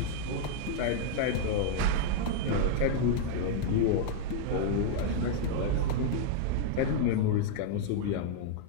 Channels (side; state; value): both; different; correlation -0.01